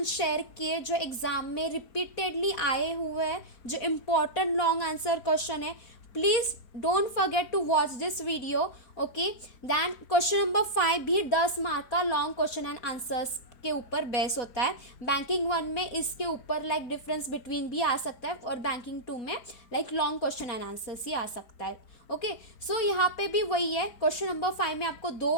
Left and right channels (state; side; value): late; right; 4.4 ms